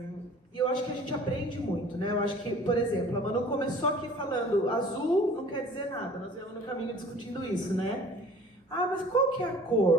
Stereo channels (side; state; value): both; normal; correlation 0.48